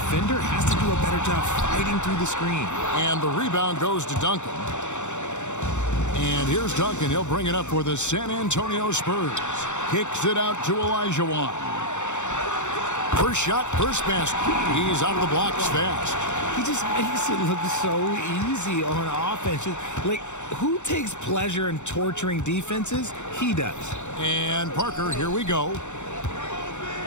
has to do a better job fighting through the screen. And the rebound goes to Duncan. And here's Duncan. He'll bring it up for the San Antonio Spurs. Kicks it out to Olajuwon. First shot, first basket. He's out of the blocks fast. He just makes it look so easy on offense. Like, who takes pleasure in torturing defenses? He does. And Parker, here we go.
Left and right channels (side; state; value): right; late; 0.84 ms